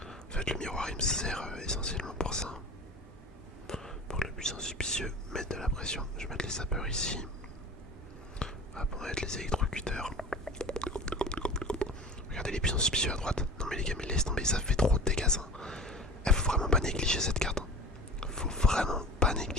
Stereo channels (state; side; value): normal; both; correlation 0.38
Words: fait, le miroir il me sert essentiellement pour ça. Pour que le puissant suspicieux mette de la pression. Je vais mettre les sapeurs ici. Hop, on va mettre les électrocuteurs. Regardez les puissants suspicieux à droite. Non mais les gars, mais laisse tomber, ça fait trop de dégâts ça. Faut vraiment pas négliger cette carte. Faut vraiment pas